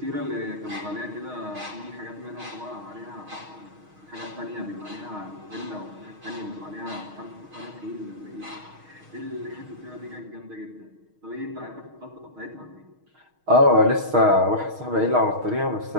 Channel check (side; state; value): left; late; 6.4 ms